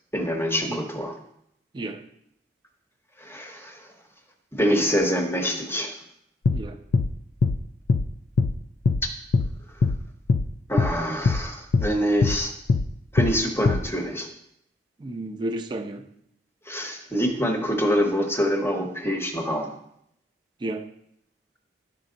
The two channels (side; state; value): both; normal; correlation 0.71